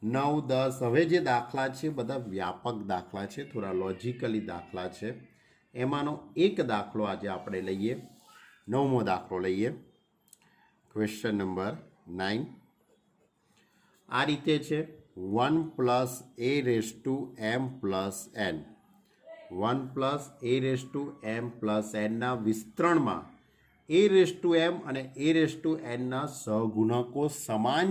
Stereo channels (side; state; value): both; identical; correlation 1.00